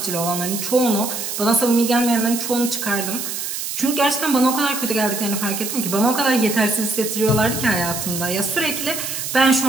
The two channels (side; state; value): right; noise; hiss, 5 dB below the sound